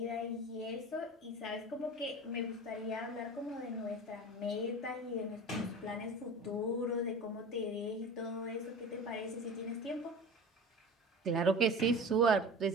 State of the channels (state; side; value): normal; both; correlation 0.34